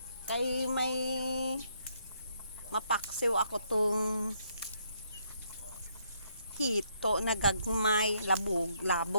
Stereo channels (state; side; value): inverted; both; correlation -0.72